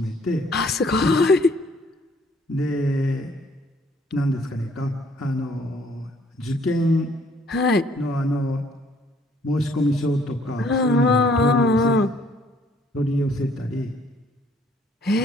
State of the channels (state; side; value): normal; both; correlation 0.62